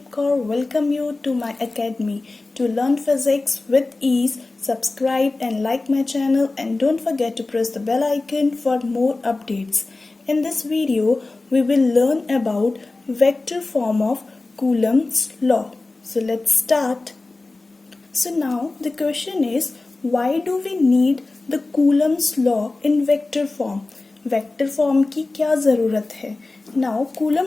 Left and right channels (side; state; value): right; quieter; 3.3 dB